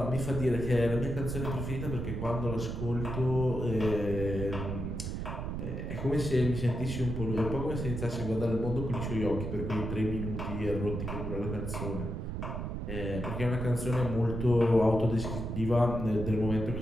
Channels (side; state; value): right; noise; rumble, 4 dB below the sound